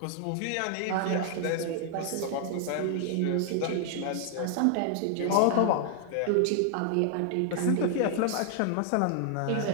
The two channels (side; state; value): both; different; correlation 0.00